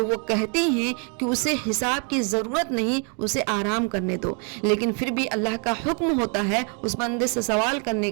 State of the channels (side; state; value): left; quieter; 38.4 dB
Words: وہ کہتی ہیں کہ اسے حساب کی ضرورت نہیں، اسے آرام کرنے دو، لیکن پھر بھی اللہ کا حکم ہوتا ہے اس بندے سے سوال کرنے